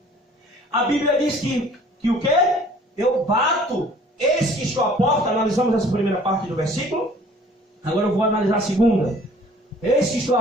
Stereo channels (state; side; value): normal; both; correlation 0.53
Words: A Bíblia diz que o quê? Eu bato. Eis que estou à porta. Analisamos essa primeira parte do versículo. Agora eu vou analisar a segunda. Eis que estou